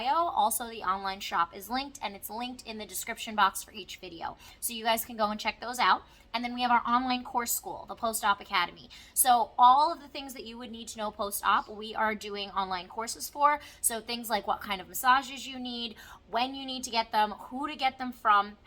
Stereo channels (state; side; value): identical; both; correlation 1.00